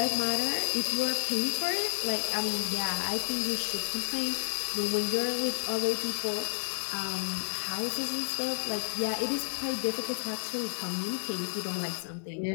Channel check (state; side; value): silent; right; digital silence